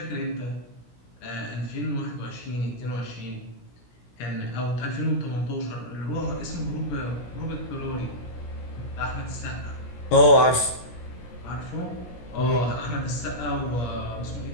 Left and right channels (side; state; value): right; late; 17 ms